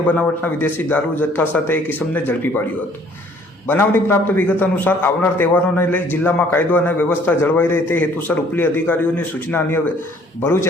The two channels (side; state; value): both; normal; correlation 0.58